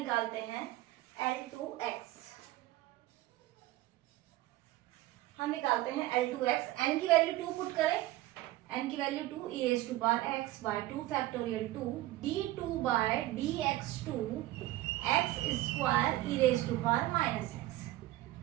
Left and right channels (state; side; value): quieter; left; 16.5 dB